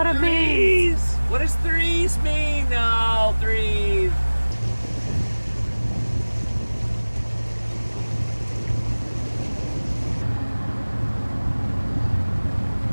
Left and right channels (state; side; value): inverted; both; correlation -1.00